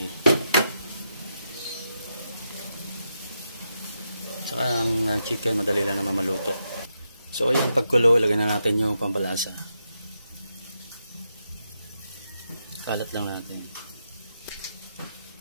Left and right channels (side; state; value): both; inverted; correlation -0.84